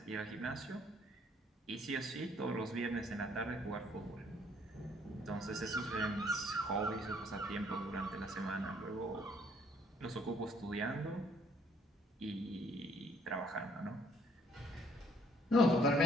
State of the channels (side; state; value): both; normal; correlation 0.64